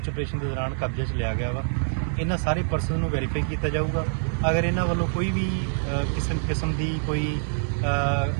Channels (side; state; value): left; silent; 57 dB below the other